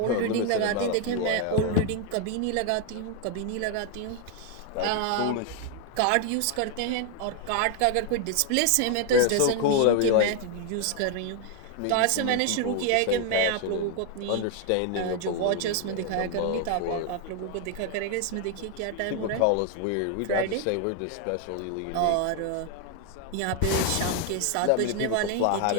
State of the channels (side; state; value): both; different; correlation 0.01